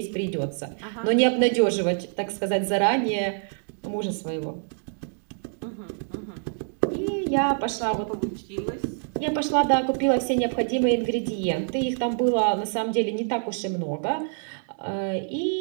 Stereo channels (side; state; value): left; silent; 61 dB below the other